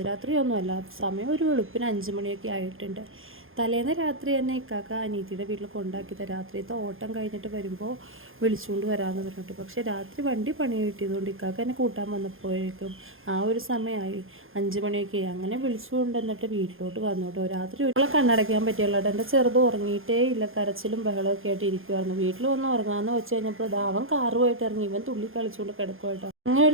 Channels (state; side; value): late; left; 0.60 ms